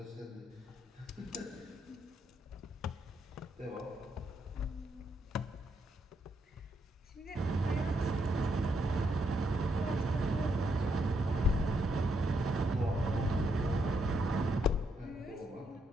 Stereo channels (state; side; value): normal; both; correlation 0.77